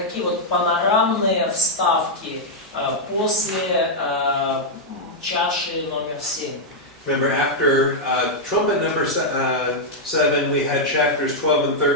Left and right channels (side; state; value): both; normal; correlation -0.04